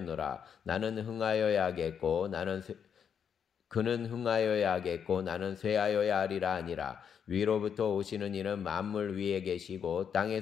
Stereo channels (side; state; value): right; quieter; 7.6 dB